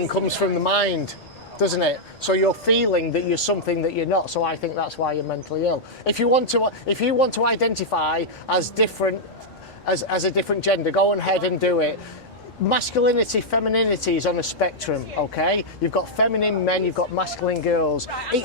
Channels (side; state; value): right; noise; rumble, 30 dB below the sound